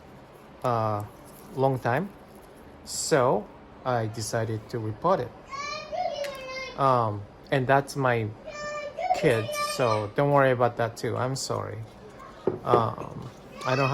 long time, so I decided to repot it. And that's my kid, so don't worry about that too. I'm sorry. I don't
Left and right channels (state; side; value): identical; both; correlation 1.00